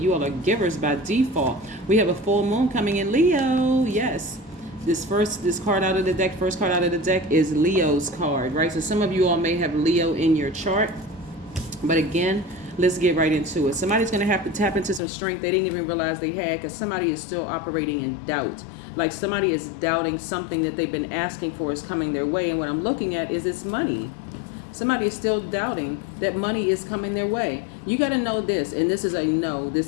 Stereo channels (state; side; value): drops out; right; at 15.0 s